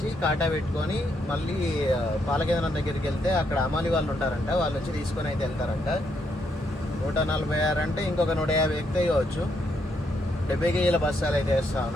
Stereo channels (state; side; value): normal; both; correlation 0.76